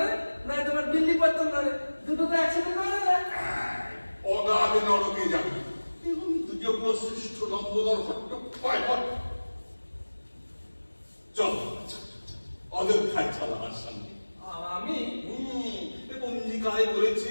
নয় তোমার বিল্লি পাত্তন ধরে, দুটো তো একসাথে ধরে না। অগাধ নরকে যাবে এবং দ্বিজকুল শ্রেষ্ঠ লম্বোদর ভট্ট পায় পায়। চল অযোধ্যায় চল আমার সঙ্গে। আমি পঞ্জিকায়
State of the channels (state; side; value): inverted; both; correlation -1.00